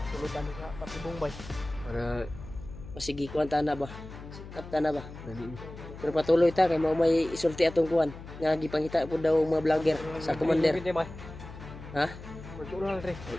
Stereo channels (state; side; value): noise; left; hum, 14 dB below the sound